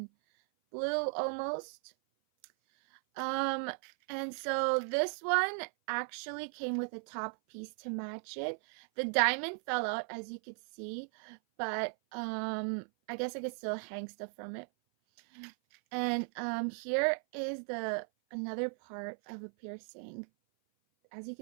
blue almost. And so this one actually came with a top piece to match it. The diamond fell out, as you could see, but I guess I could still hang stuff from it. And here is another part of a piercing. As you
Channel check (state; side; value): silent; left; 53 dB below the other